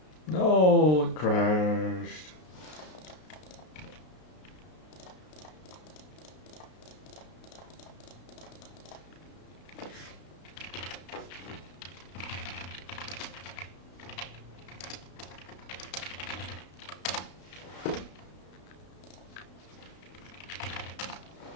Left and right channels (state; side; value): late; right; 33 ms